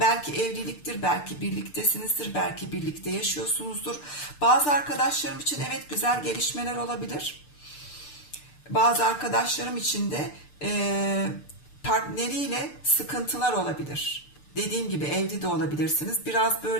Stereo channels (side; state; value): right; late; 6.8 ms